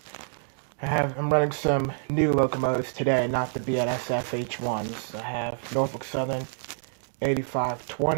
I'm running some new locomotives today, not the BNSF H1s. I have Norfolk Southern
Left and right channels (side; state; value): left; silent; digital silence